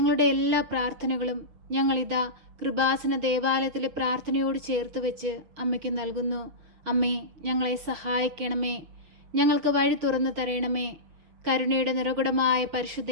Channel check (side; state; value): left; late; 6.3 ms